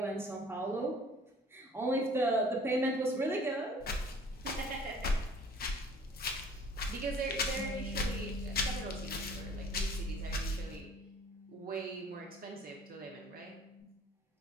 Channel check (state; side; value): normal; both; correlation 0.52